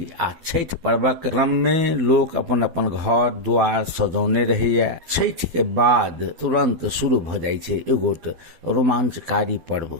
आ छठ पर्वक क्रम में लोग अपन अपन घर द्वार सजौने रहिए। छठ के बाद तुरंत शुरू भ जाय छै एगोट रोमांचकारी पर्व।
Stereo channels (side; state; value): left; late; 12 ms